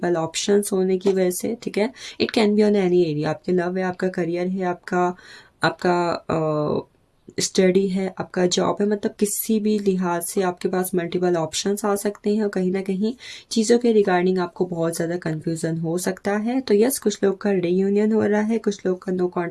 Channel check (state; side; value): identical; both; correlation 1.00